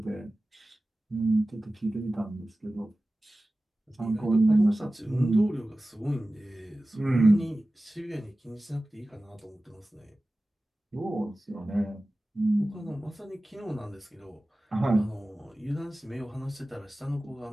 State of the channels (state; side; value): normal; both; correlation 0.96